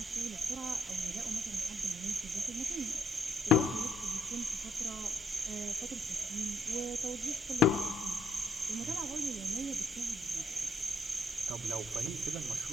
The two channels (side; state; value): both; normal; correlation 0.70